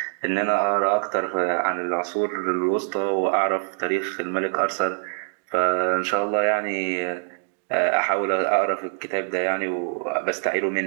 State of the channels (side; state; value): left; silent; digital silence